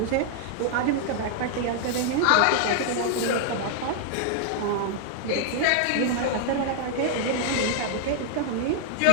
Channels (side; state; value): both; different; correlation -0.01